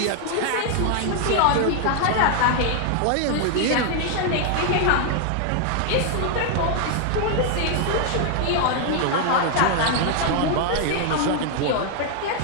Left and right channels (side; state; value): both; different; correlation 0.00